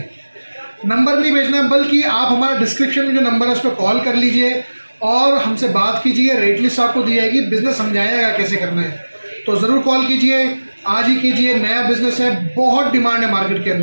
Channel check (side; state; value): both; inverted; correlation -1.00